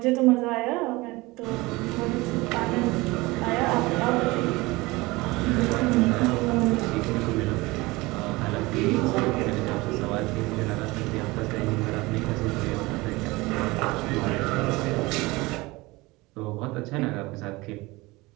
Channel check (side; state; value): left; quieter; 22.0 dB